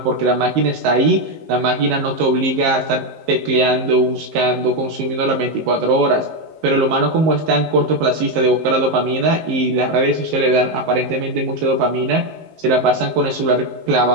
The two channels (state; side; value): late; left; 19 ms